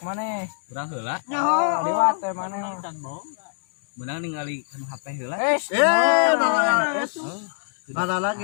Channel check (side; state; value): right; silent; digital silence